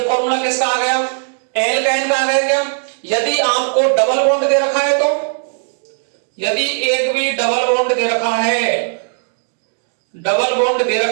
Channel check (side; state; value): left; silent; digital silence